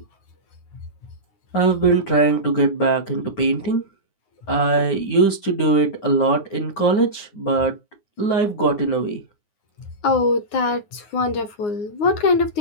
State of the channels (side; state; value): right; late; 9.6 ms